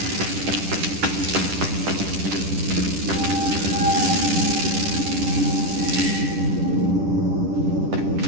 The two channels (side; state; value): left; late; 10 ms